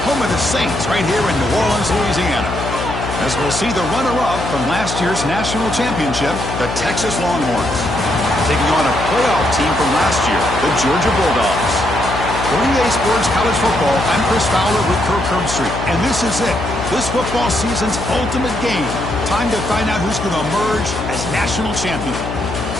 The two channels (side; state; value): left; noise; hum, 6 dB below the sound